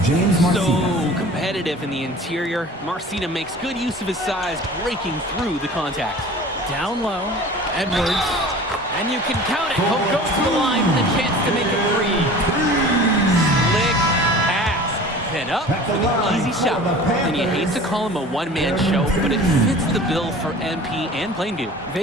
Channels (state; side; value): normal; both; correlation 0.41